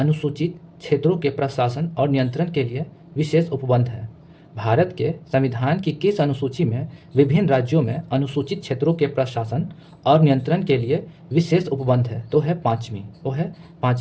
क्षेत्रों के प्रशासन और नियंत्रण के लिए विशेष उपबंध है? भारत के संविधान की किस अनुसूची में विभिन्न राज्यों में अनुसूचित क्षेत्रों के प्रशासन और नियंत्रण के लिए विशेष उपबंध है? तो है 5वीं, वो है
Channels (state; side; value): identical; both; correlation 1.00